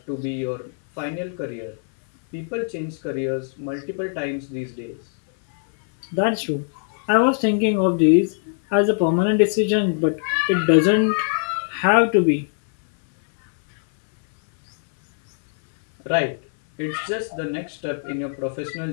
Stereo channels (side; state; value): right; silent; 59 dB below the other